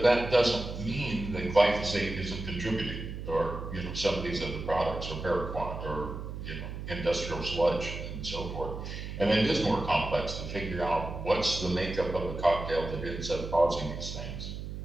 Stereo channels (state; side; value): noise; right; hum, 7 dB below the sound